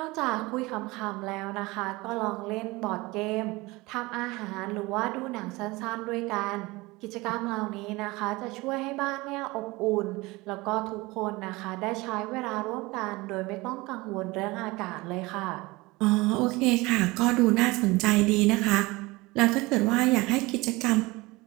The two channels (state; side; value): quieter; left; 22.2 dB